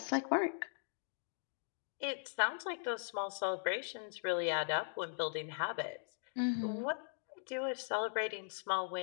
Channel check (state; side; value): silent; right; digital silence